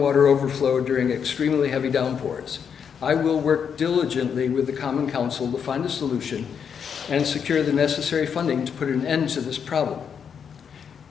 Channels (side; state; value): right; quieter; 7.2 dB